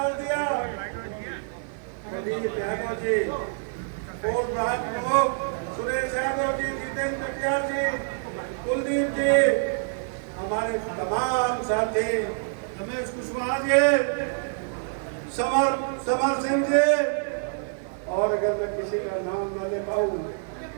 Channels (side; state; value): left; silent; digital silence